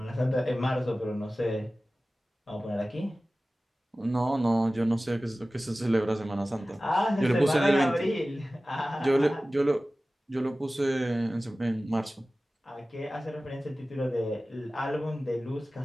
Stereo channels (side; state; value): both; normal; correlation 0.96